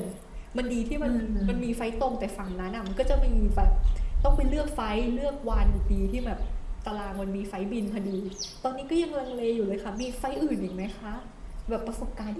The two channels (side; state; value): both; identical; correlation 1.00